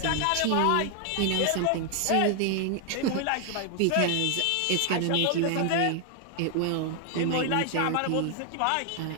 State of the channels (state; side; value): different; both; correlation 0.00